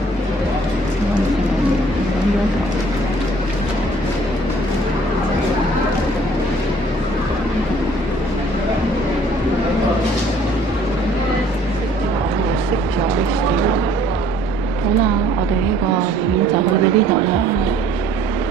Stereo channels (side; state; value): both; normal; correlation 0.57